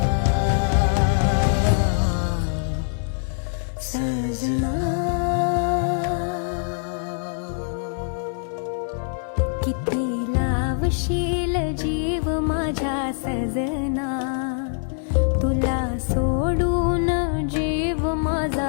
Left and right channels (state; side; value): silent; right; digital silence